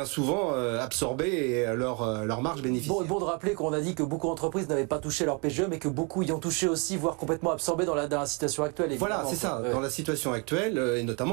souvent absorber leur marge bénéficiaire. Bon de rappeler qu'on a dit que beaucoup d'entreprises n'avaient pas touché leur PGE, mais que beaucoup y ont touché aussi, voire complètement absorbé dans la situation actuelle. Voilà, c'est ça. Dans la situation actuelle, et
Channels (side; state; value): left; quieter; 33.6 dB